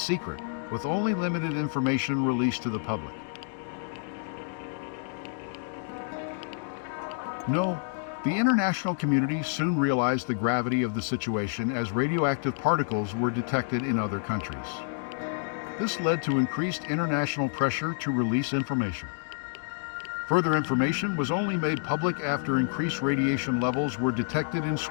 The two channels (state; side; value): silent; right; digital silence